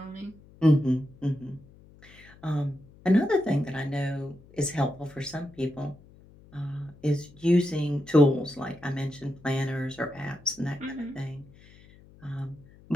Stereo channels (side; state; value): left; noise; hum, 24 dB below the sound